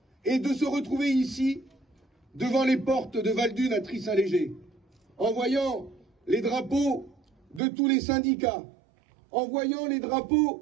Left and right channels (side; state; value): left; drops out; at 7.6 s